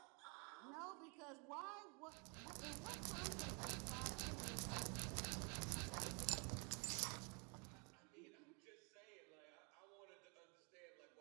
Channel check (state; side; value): quieter; left; 34.9 dB